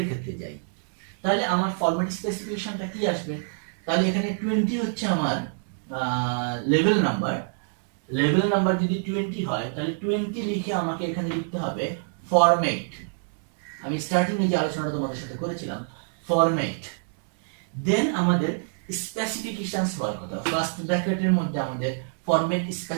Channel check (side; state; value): left; silent; digital silence